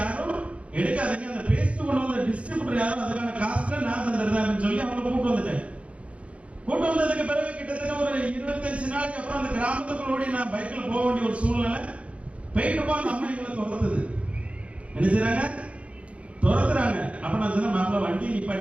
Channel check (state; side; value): late; left; 0.063 ms